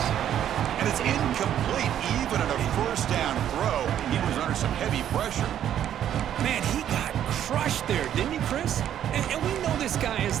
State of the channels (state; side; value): quieter; left; 10.5 dB